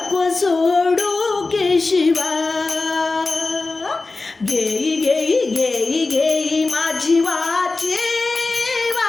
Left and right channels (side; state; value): right; quieter; 3.6 dB